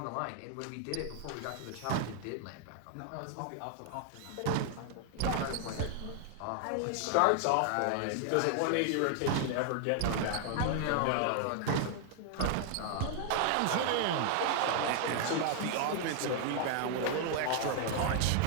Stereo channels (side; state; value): both; different; correlation 0.00